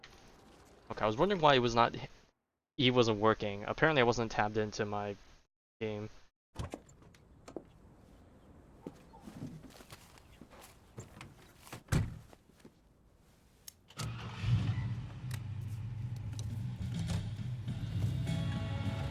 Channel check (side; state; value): both; identical; correlation 1.00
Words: Okay, I was wondering why it was not E wasn't working. Apparently I wasn't tabbed into my game.